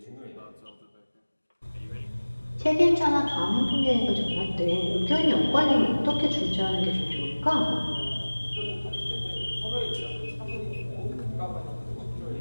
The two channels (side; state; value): both; inverted; correlation -1.00